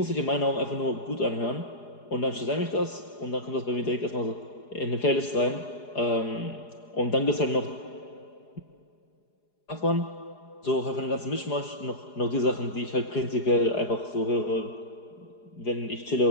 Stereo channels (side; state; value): right; late; 4.8 ms